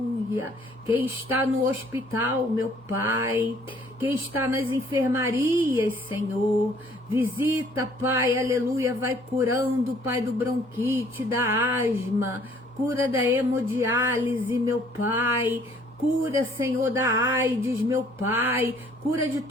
Quem está no hospital, meu Pai. Quem está nas enfermarias, Senhor. Visita, Pai, aleluia. Vai curando, Pai, do bronquite, da asma. Cura da hemodiálise, meu Pai. Cura, Senhor, da AIDS, meu Pai. Cura de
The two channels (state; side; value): normal; both; correlation 0.60